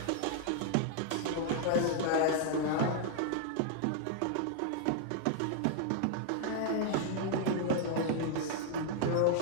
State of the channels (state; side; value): different; both; correlation 0.00